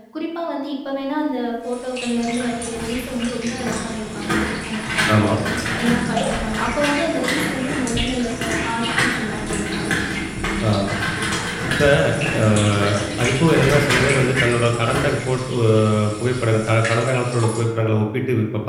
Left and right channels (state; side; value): identical; both; correlation 1.00